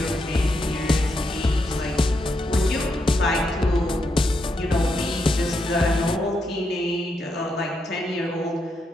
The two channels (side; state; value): both; normal; correlation 0.82